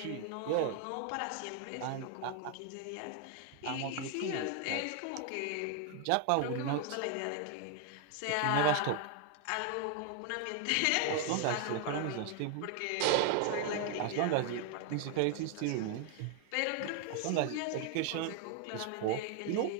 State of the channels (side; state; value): both; different; correlation 0.00